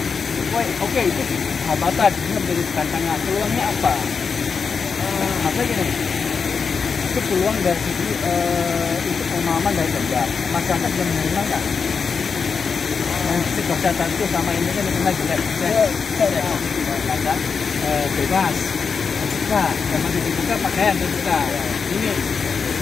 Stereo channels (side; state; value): right; quieter; 5.6 dB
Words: Oke, itu hambatan, ini menjadi tantangan. Peluangnya apa? Maksudnya gini, itu peluang dari segi untuk pemahaman dari kerja. Masyarakat yang menerima nggak? Kesehatan itu sama ini kan menerima jelek. Ada bebas, terbuka, sama dibuka pakaian terbuka. Ini